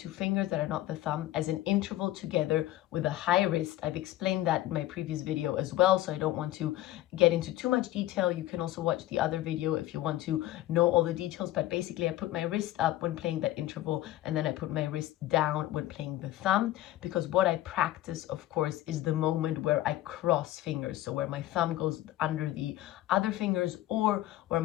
fingers that are not the thumb, as an interval together with a high wrist. I've explained that in my previous video as well, so I don't want to get into too much detail. You can also watch the other video if you want to know all the details, but basically I put my wrist up when playing that interval, and then I put my wrist down when playing the thumb, because what I practice, of course, is the moment where I cross fingers, so where my thumb goes under the other fingers, or where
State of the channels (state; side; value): quieter; right; 15.0 dB